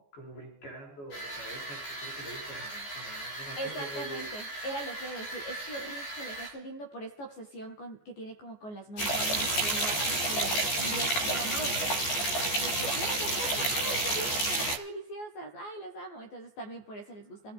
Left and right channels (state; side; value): late; right; 14 ms